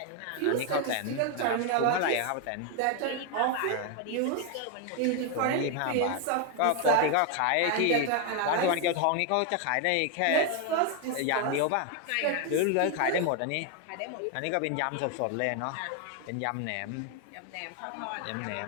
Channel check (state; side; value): different; both; correlation 0.01